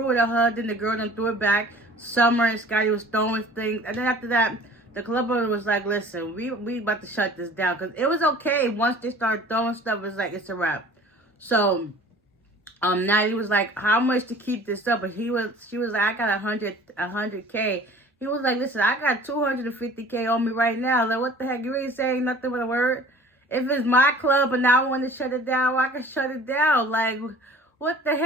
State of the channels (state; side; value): normal; both; correlation 0.47